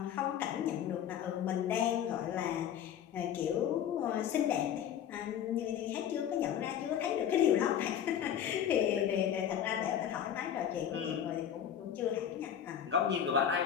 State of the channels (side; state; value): right; quieter; 9.4 dB